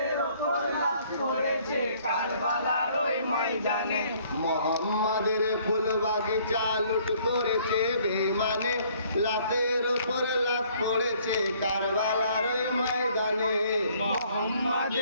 ওপর লাশ পড়েছে কারবালার ওই ময়দানে। মোহাম্মদের ফুল বাগিচা লুট করেছে বেঈমানে, লাশের ওপর লাশ পড়েছে কারবালার ওই ময়দানে।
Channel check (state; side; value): inverted; both; correlation -0.61